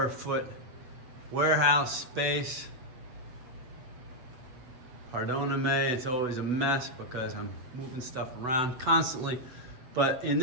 foot warehouse space. Pardon me, it's always a mess because I'm moving stuff around constantly. But in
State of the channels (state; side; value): late; left; 8.1 ms